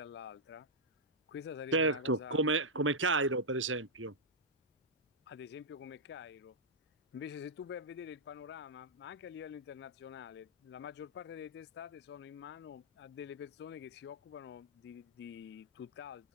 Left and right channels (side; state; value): both; normal; correlation -0.08